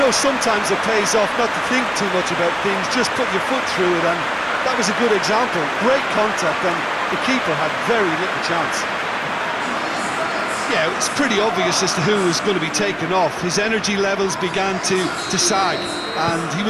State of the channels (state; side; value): identical; both; correlation 1.00